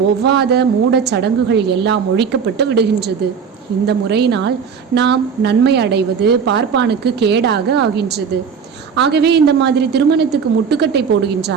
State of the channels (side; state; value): left; quieter; 6.5 dB